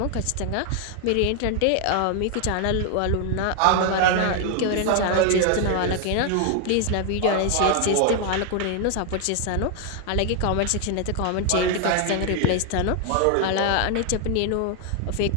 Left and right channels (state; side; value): different; both; correlation 0.00